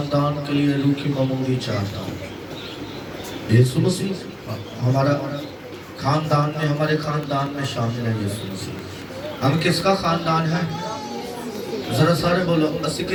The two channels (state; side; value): identical; both; correlation 1.00